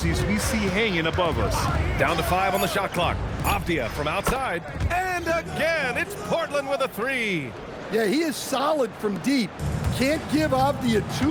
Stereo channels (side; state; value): both; identical; correlation 1.00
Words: we see hanging above us. Down to 5 on the shot clock. Avdia from outside. And again, it's Portland with a 3. Yeah, he is solid from deep. Can't give Avdia